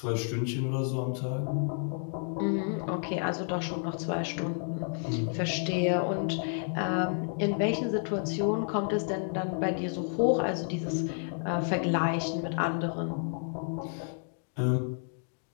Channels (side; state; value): right; silent; 57 dB below the other